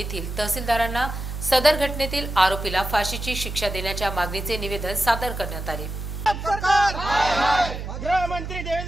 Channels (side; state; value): right; noise; hum, 7 dB below the sound